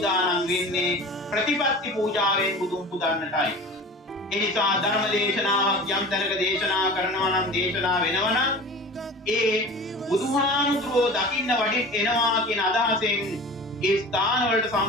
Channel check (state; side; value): normal; both; correlation 0.38